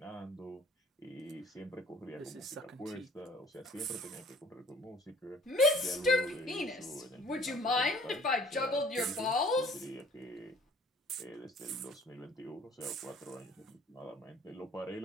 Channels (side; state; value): both; normal; correlation 0.54